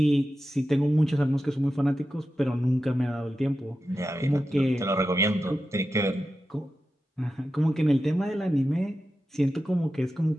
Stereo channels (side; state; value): both; normal; correlation 0.91